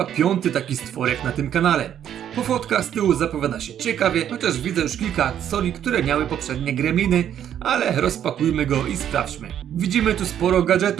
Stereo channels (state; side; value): quieter; left; 10.0 dB